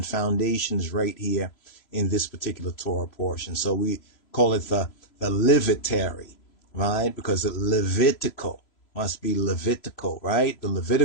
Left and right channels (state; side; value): late; right; 3.0 ms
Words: foundation is right here in this particular Torah portion. So we call it the Levitary, right? Because it Levitical must be Levitical, right? The